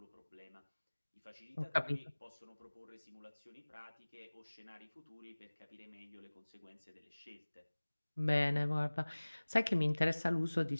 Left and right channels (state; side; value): inverted; both; correlation -1.00